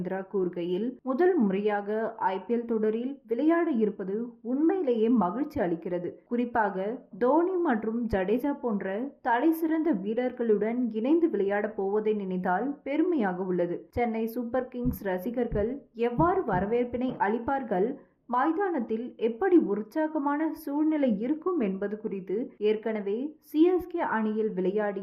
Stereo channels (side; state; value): both; identical; correlation 1.00